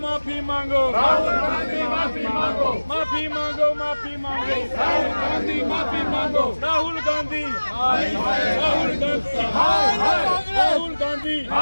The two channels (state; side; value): inverted; both; correlation -1.00